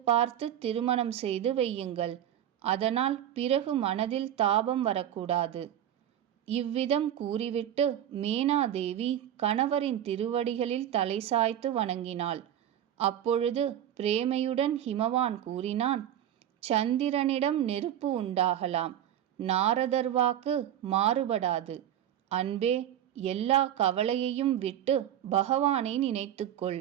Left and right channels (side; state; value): left; quieter; 10.8 dB